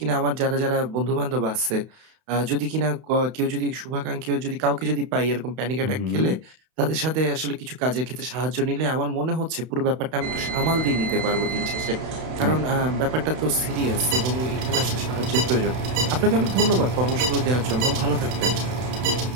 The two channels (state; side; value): late; left; 32 ms